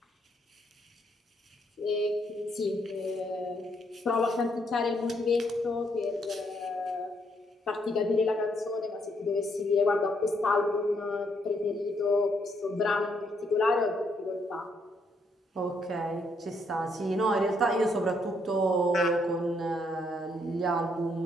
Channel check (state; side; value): normal; both; correlation 0.73